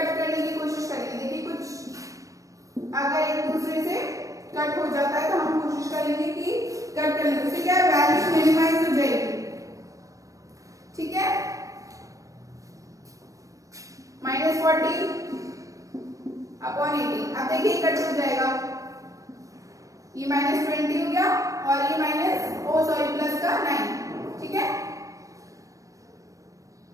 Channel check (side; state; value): left; late; 0.16 ms